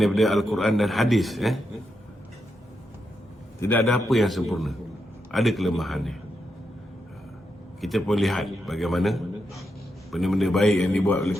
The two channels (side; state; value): both; normal; correlation 0.84